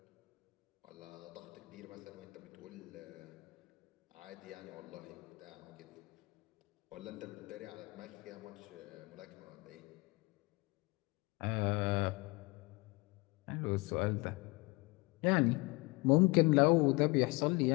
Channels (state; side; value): quieter; right; 25.8 dB